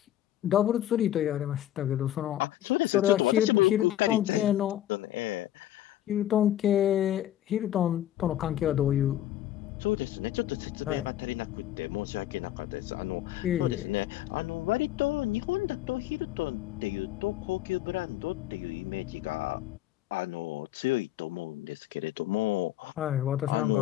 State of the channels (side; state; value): right; quieter; 12.9 dB